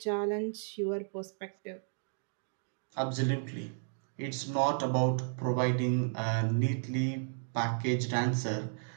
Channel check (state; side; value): silent; left; digital silence